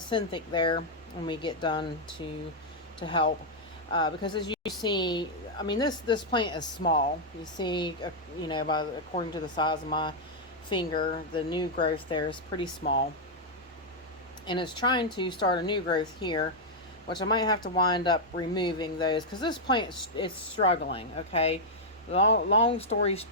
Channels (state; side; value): normal; both; correlation -0.04